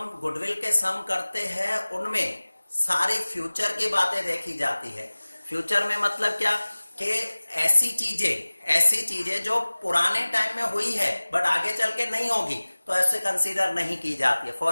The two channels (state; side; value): inverted; both; correlation -1.00